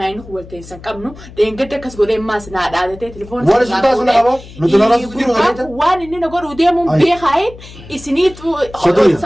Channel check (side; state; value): left; noise; hum, 18 dB below the sound